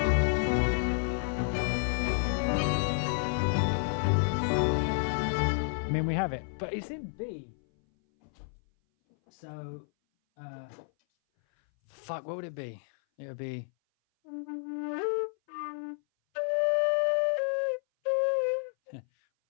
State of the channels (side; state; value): right; silent; 57 dB below the other